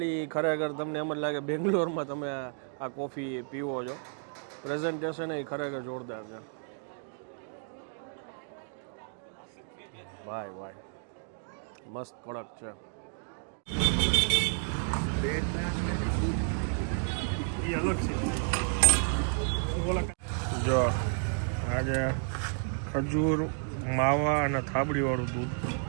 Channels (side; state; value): left; silent; 57 dB below the other